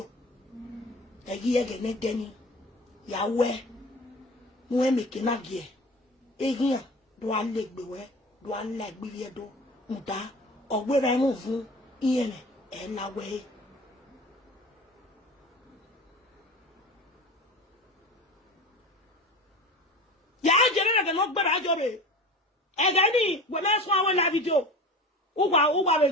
e gi ege ne deni ya we mu e meke na gie e gian do alegbe we do alegbe vie do nda ogbera mu fun iyen e la we ya jere na no gbera ajobe e ga ni we na so awon live video o wa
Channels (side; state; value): both; normal; correlation 0.35